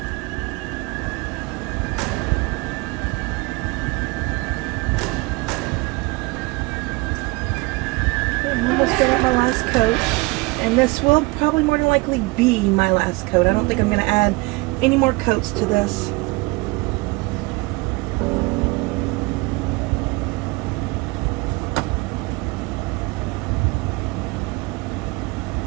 I'm almost done with my last coat, and this will probably more than likely be my last coat. I don't think I'm going to add any more coats to this.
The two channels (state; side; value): quieter; left; 25.3 dB